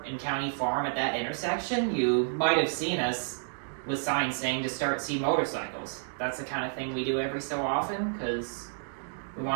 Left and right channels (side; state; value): left; silent; digital silence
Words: in County Farm at that intersection, you might have seen us with signs saying to see motorcycles. That's the kind of thing we do every so often, because we